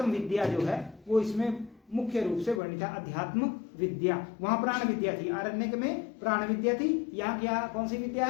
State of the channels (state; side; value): drops out; right; at 2.6 s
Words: विद्या जो है वो इसमें मुख्य रूप से वर्णित है। अध्यात्म विद्या, वहां प्राण विद्या थी, आरण्यक में प्राण विद्या थी, यहाँ क्या कौन सी विद्या